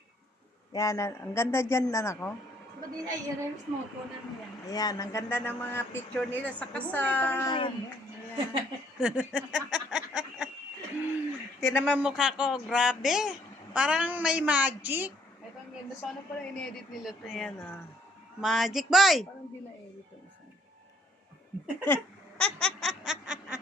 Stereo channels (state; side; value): normal; both; correlation 0.64